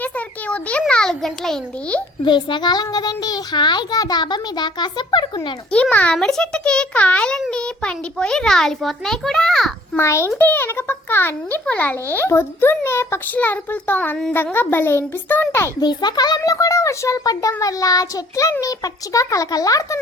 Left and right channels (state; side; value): normal; both; correlation 0.56